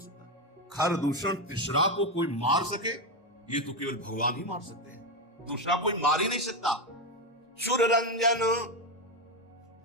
सकता है? खरदूषण तिसरा को कोई मार सके, ये तो केवल भगवान ही मार सकते हैं, दूसरा कोई मार ही नहीं सकता। सुर रंजन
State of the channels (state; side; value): normal; both; correlation 0.10